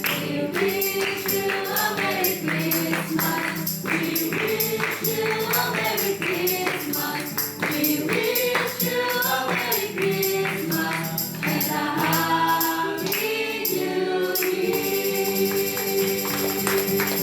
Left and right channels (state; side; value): identical; both; correlation 1.00